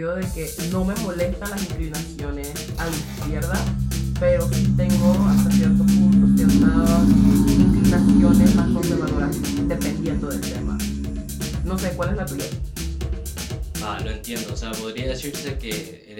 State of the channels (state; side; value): identical; both; correlation 1.00